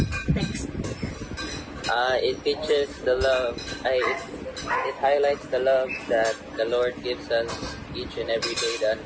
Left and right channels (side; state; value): both; identical; correlation 1.00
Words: Next. It teaches the love. It highlights the love that the Lord gives us each and every day, the